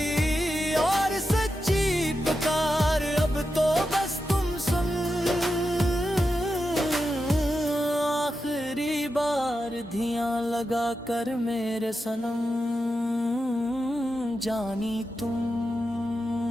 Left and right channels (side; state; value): both; normal; correlation 0.89